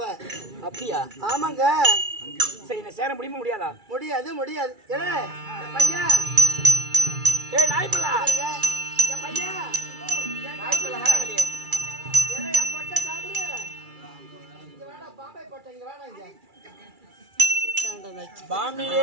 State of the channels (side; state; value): left; late; 2.3 ms